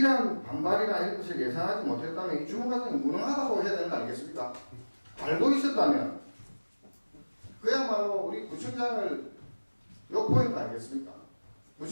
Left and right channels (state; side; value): inverted; both; correlation -1.00